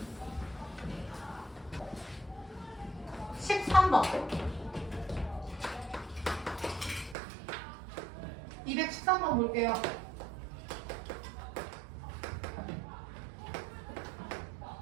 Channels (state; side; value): drops out; left; at 7.2 s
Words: (13번) 213번 볼게요.